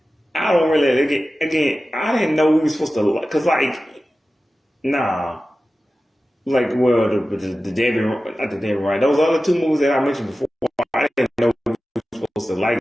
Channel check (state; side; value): normal; both; correlation 0.95